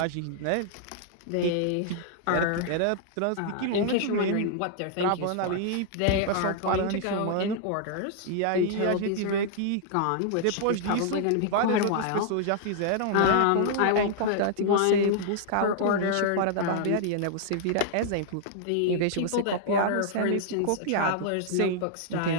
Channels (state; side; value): different; both; correlation -0.01